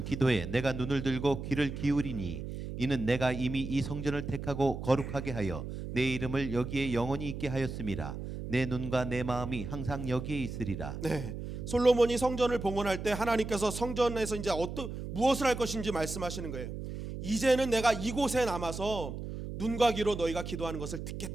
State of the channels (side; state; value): right; noise; hum, 7 dB below the sound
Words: 기도에 내가 눈을 들고 귀를 기울이니 이는 내가 이미 이 성전을 택하고 거룩하게 하여 내 이름을 여기에 영원히 있게 하였음이라. 내 눈과 내 마음이 항상 여기에 있으리라. 네, 솔로몬이 성전을 봉헌할 때 하나님께서 성전에서 이제 무엇을 할 것인지 말씀하시는 거예요. 이제는 내가 이곳에 남아서 눈과 귀로 너희가 기도하는 것을